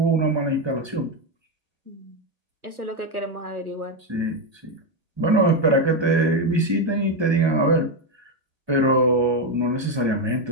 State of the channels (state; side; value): late; left; 1.3 ms